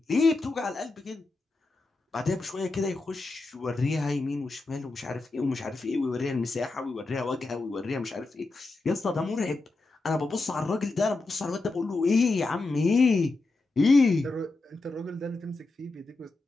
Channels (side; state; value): right; quieter; 3.3 dB